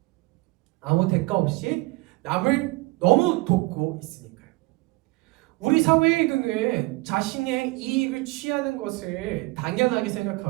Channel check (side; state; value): left; quieter; 23.2 dB